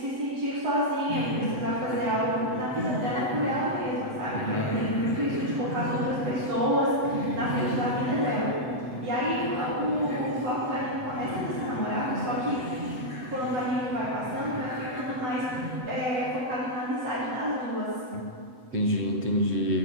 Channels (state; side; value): late; left; 7.9 ms